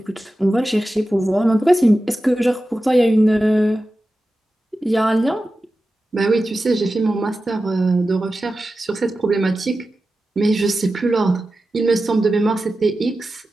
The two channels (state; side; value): normal; both; correlation 0.93